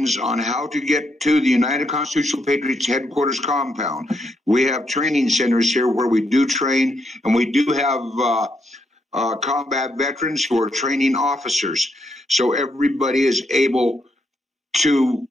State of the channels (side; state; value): both; normal; correlation 0.78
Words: on how to get to the United Constitutional Patriots headquarters compound. We have training centers here where we do train, and we do have combat veterans who are training officers. So everybody is able to